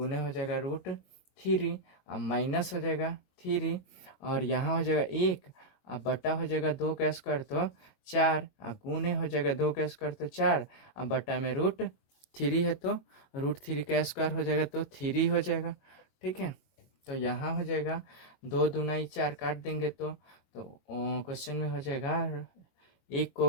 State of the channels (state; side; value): late; right; 22 ms